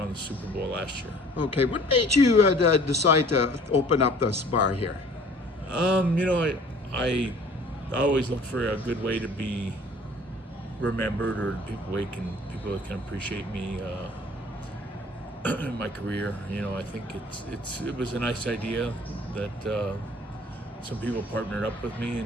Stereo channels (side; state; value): both; normal; correlation 0.51